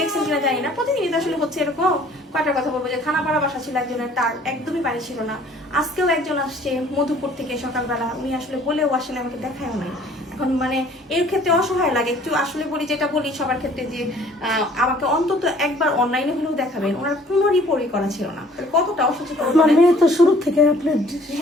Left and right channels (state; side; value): normal; both; correlation 0.55